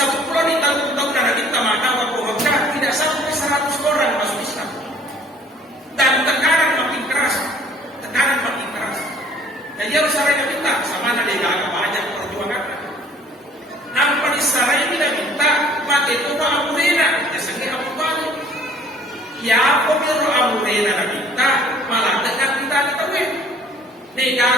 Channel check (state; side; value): normal; both; correlation 0.55